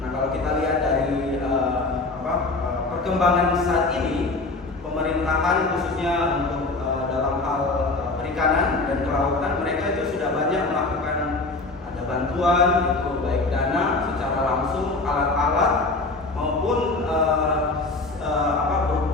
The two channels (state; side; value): quieter; right; 3.3 dB